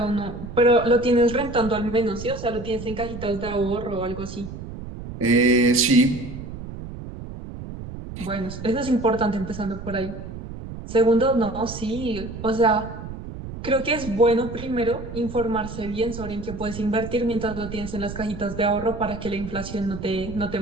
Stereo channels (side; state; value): right; noise; rumble, 10 dB below the sound